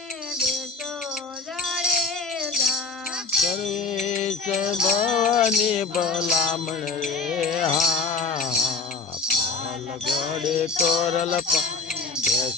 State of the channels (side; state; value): right; quieter; 4.3 dB